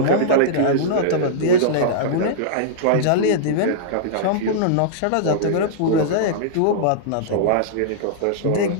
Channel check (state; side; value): different; both; correlation -0.02